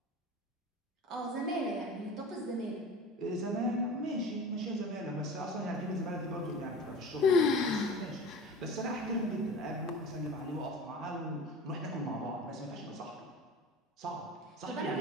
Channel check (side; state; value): both; normal; correlation 0.36